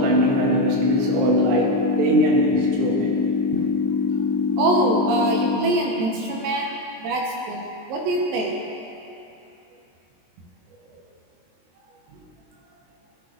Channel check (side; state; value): left; late; 23 ms